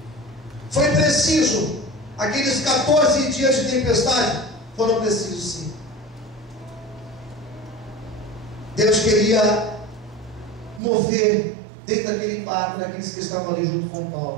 Foi preciso, aqueles 14 dias de tempestade foram precisos sim. Deus queria mover dentro daquele barco, daqueles que estavam ali junto com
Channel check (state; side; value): drops out; left; at 10.8 s